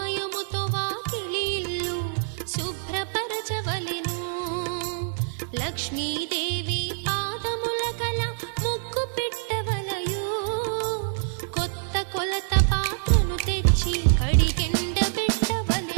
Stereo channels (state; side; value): silent; left; digital silence